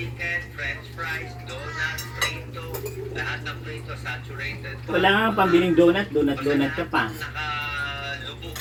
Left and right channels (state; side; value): identical; both; correlation 1.00